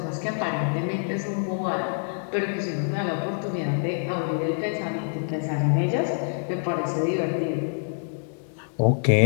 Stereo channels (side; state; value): right; silent; digital silence